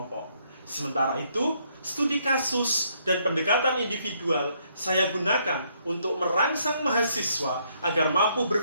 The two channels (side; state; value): both; inverted; correlation -0.71